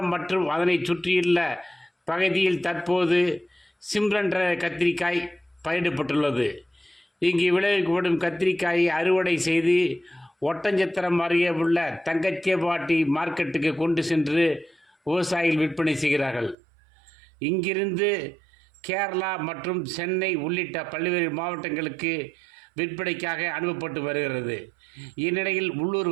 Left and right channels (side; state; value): left; drops out; at 16.6 s